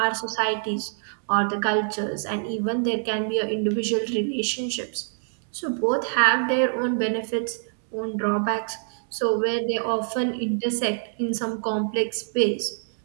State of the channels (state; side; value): silent; left; digital silence